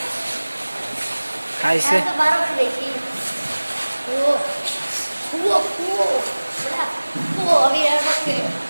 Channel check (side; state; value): both; inverted; correlation -1.00